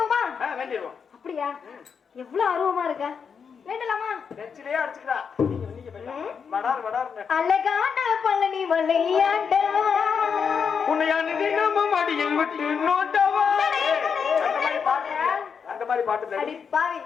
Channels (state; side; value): quieter; right; 6.4 dB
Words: வேண்டிடுவோம். அப்படியா? எவ்வளவு ஆர்வமா இருக்க. வேண்டலாமா? நெச்சிலே அடிச்சுக்கிறா. நீங்க போய் வடார் வடார்னு. அழகான பழனி மலையாண்டா உன்னையான நம்ம மடியில் விட்டு நோட்டவா. அந்த மாதிரி பாட்டு அடி பாவி.